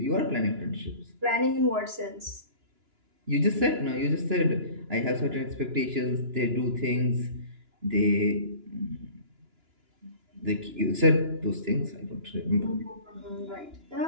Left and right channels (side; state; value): left; late; 2.9 ms